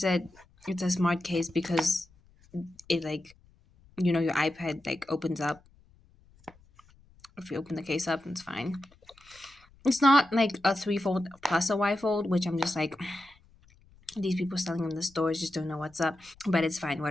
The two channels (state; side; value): noise; left; rumble, 29 dB below the sound